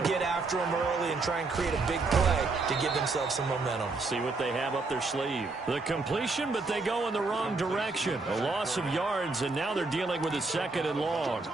get after them early and try and create a big play to give themselves some momentum. See what they have up their sleeve. The completion, but they go in the wrong direction. A loss of yards, and now they're dealing with a 2nd and long.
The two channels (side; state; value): left; quieter; 3.7 dB